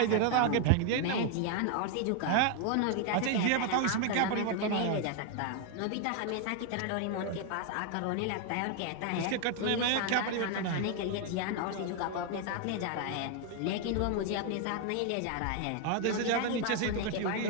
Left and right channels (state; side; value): different; both; correlation 0.00